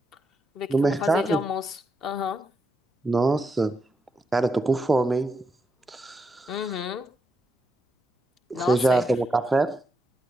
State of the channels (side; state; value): both; normal; correlation 0.84